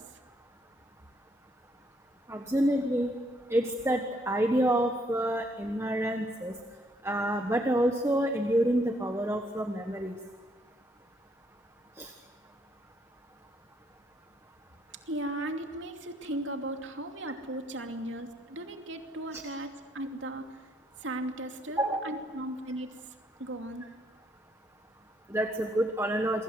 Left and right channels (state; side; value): normal; both; correlation 0.71